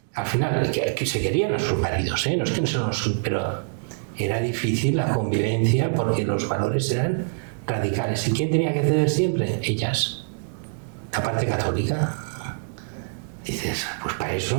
Al final, que se querían a sus maridos, no es que no se nos... pero era difícil la convivencia porque los valores eran radicales. ¿Y quién tenía que ceder siempre? Ellas. La parte católica. Dices, pues para eso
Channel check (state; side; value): silent; left; digital silence